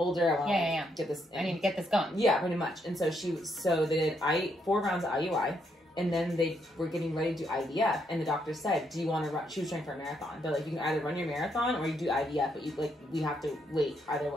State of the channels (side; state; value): both; normal; correlation 0.76